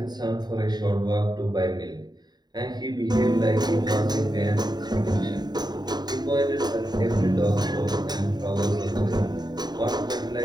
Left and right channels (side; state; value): left; late; 0.20 ms